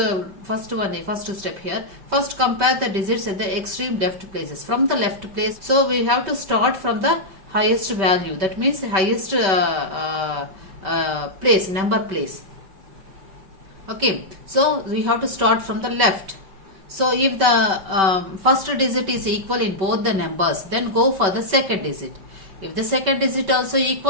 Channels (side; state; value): left; late; 5.2 ms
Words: step here. First compare the digits at the extreme left places. From the left place, so we have to start from the highest value. That means the highest number place. Okay, so we have to start from the left. So if the first digit is equal in both the numbers, then go for the second digit. If the second digit also